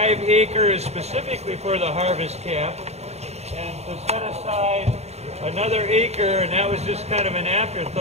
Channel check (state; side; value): late; left; 0.31 ms